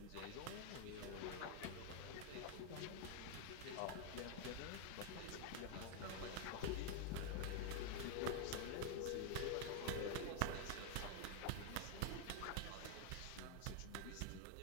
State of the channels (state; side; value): different; both; correlation 0.00